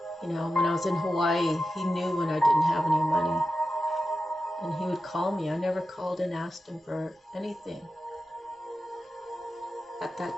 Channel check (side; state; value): both; normal; correlation 0.91